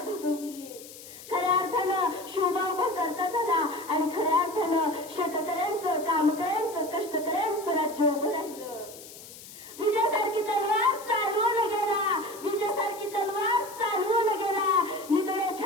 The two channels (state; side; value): noise; left; hiss, 16 dB below the sound